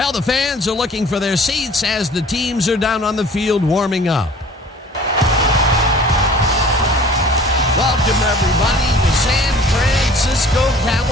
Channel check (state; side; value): normal; both; correlation 0.48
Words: the fans are looking for their seats as the teams are down on the field warming up. Welcome, everybody, to San Francisco,